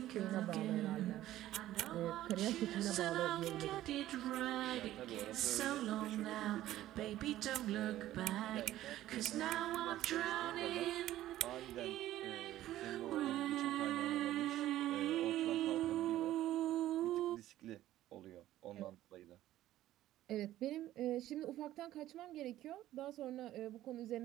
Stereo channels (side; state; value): left; quieter; 14.1 dB